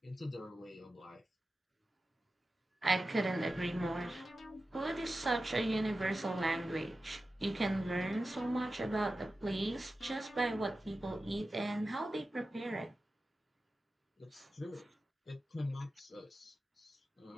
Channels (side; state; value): both; normal; correlation 0.93